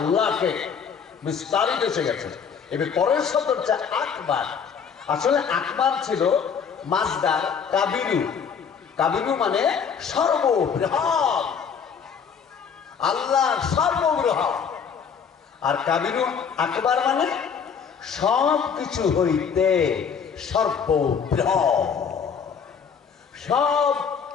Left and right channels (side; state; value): right; quieter; 6.7 dB